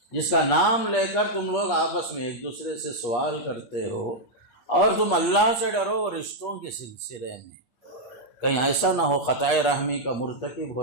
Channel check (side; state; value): right; late; 8.3 ms